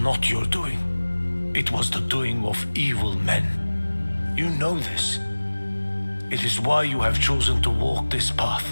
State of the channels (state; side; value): inverted; both; correlation -1.00